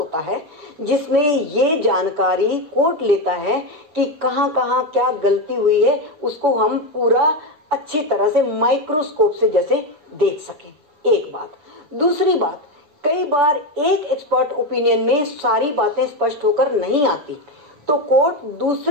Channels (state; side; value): late; left; 7.0 ms